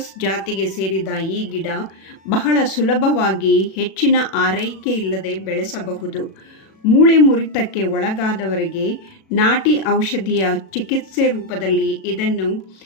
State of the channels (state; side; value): late; right; 37 ms